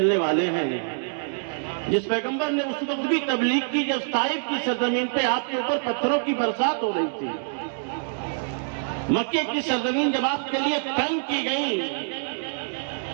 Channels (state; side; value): silent; left; digital silence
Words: والے ہیں. جس پیغمبر نے اس وقت بھی تبلیغ کی جب طائف کی سرزمین پہ آپ کے اوپر پتھروں کی برسات ہو رہی تھی، مکے کی سرزمین جب آپ کے لیے تنگ کی گئی،